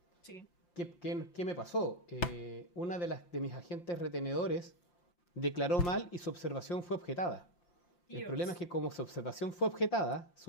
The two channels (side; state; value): right; late; 5.7 ms